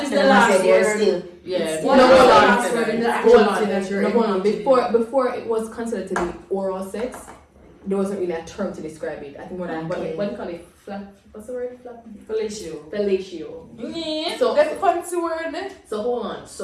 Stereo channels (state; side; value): identical; both; correlation 1.00